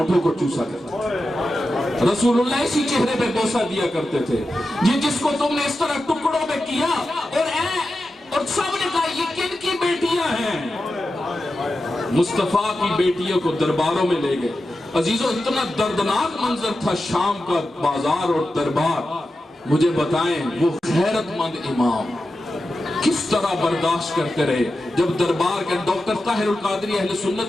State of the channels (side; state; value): both; normal; correlation 0.91